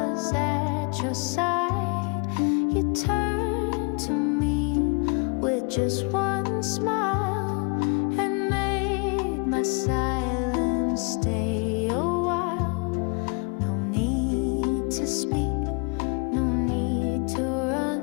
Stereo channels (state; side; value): quieter; right; 34.4 dB